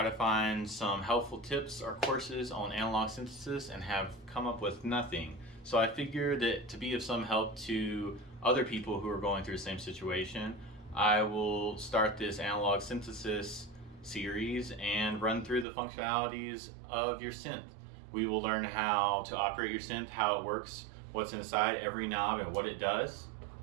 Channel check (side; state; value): left; drops out; at 15.7 s